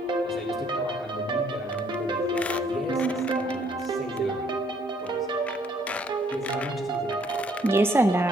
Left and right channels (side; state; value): both; normal; correlation 0.65